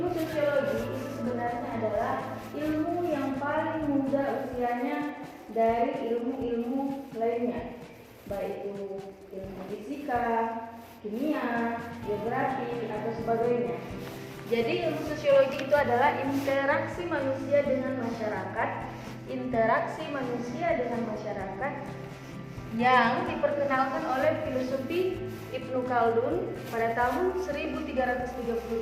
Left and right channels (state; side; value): identical; both; correlation 1.00